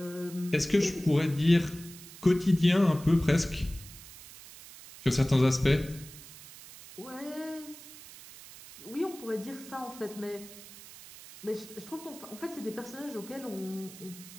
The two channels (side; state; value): right; noise; hiss, 17 dB below the sound